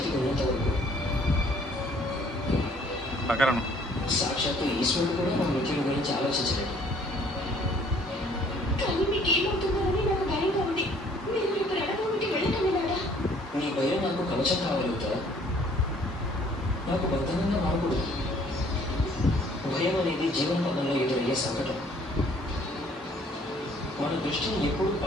ఉన్నంత వరకు సాక్షాత్తు ఈశ్వరుడు కూడా నా మిత్రుడి గురించి ఆలోచించలేదు. కానీ మీకేమవుతుందని నాకు భయంగా ఉంది. మీరు రేపు రణభూమికి వెళ్ళటమేనాడా? నీ భయం నాకు కవచం కావాలవుతా, నాకు బద్ధంగా మారకూడదు. భయం అనేది జీవన పదంలో ఎదురయ్యే సంకటం. మన దృష్టిని ఎప్పుడు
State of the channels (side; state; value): both; normal; correlation 0.58